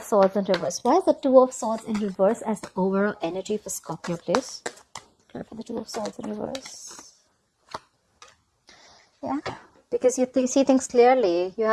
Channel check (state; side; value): identical; both; correlation 1.00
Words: Swords in reverse. Why is the Two of Swords in reverse as the overall energy for Scorpio, please? Clarify the Two of Swords in reverse. Yeah. because you see things clearly. You